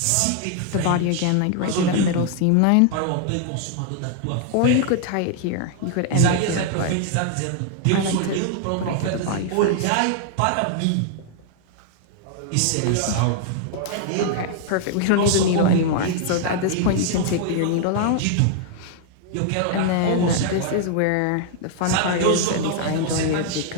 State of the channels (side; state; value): both; different; correlation 0.00